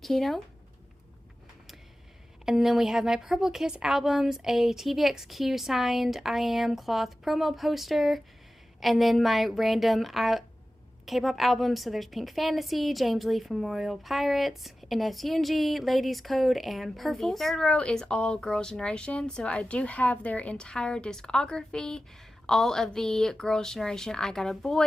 Kino. And then we have my Purple Kiss albums, a TVXQ signed I Am cloth promo poster, and then my random K-pop albums. So there's Pink Fantasy, James Lee from Royal Pirates, NS Yoongi, Ladies Code, and Purples. The third row is all Girls' Generation, so I do have their entire discography. All of the Girls' Generation I Got a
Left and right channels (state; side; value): normal; both; correlation 0.95